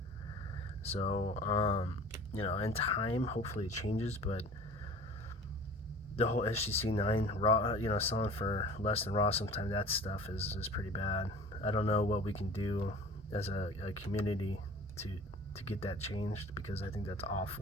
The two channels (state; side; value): normal; both; correlation 0.43